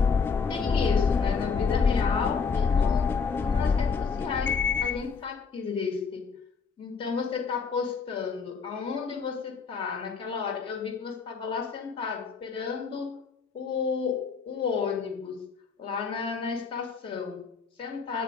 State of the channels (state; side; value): quieter; right; 5.4 dB